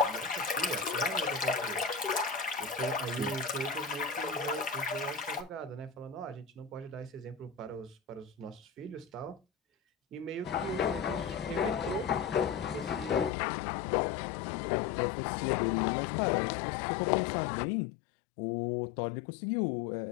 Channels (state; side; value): drops out; right; at 13.3 s